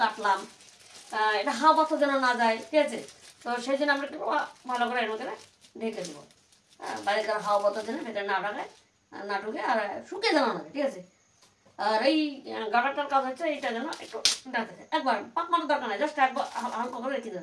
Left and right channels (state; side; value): identical; both; correlation 1.00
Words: এটা হাওয়া বাতাস যেন না যায়, ঠিক আছে। তো সেই জন্য আমরা একটু ভালো করে এর মধ্যে ঢেকে দেবো, বাইরেকার হাওয়া বাতাস যেন ভেতরে না ঢাকায়, না ঢুকে, আর শুকিয়ে যেন না, ঠিক আছে। আর এই গাটারটার কাজ হচ্ছে এইটা যেন একটু ডাকে যায়, একবার পাক মারার দরকার নাই, জাস্ট একবার হালকা করে রেখে